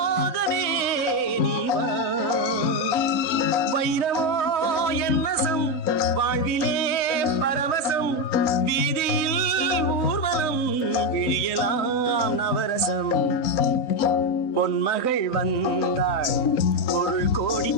நீவா. வைரமோ என் வசம், வாழ்விலே பரவசம், வீதியில் விழியலாம் நவரசம். பொன்மகள் வந்தாள், பொருள் கோடி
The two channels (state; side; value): late; right; 3.9 ms